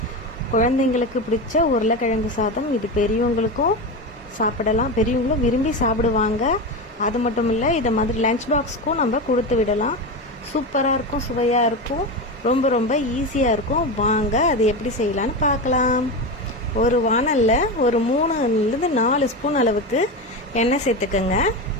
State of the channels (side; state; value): both; normal; correlation 0.19